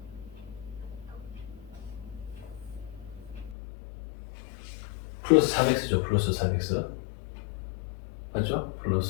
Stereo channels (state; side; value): drops out; right; at 3.6 s